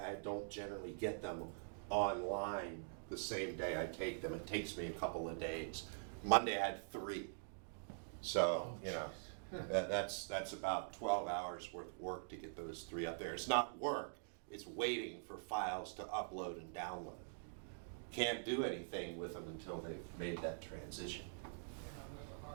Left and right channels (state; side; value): silent; left; digital silence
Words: I don't generally get them online the same day I take them. It takes me a couple of days. Monday I had 3. So, you know, that's about 12 hours worth of work to get those 3 up there. It's not work. It's waiting for files to upload and download. Can't do anything with them until they've made that transition.